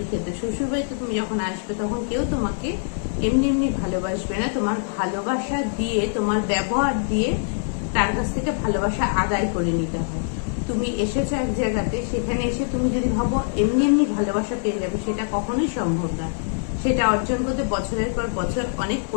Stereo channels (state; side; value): silent; right; digital silence